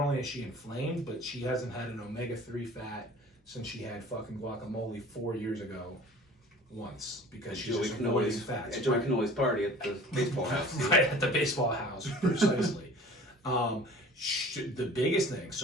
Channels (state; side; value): normal; both; correlation 0.45